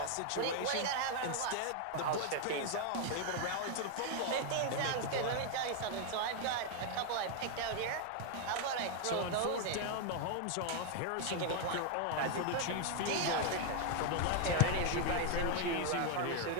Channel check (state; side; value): different; both; correlation 0.00